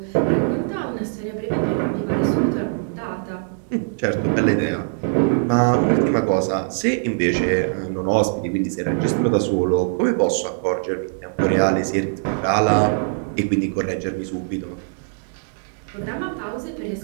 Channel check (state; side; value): silent; left; digital silence